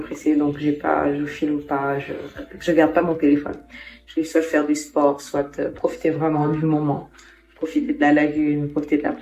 donc je filme pas, je garde pas mon téléphone. Je vais soit faire du sport, soit profiter vraiment du moment, profiter de la lagune, profiter de la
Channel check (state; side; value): identical; both; correlation 1.00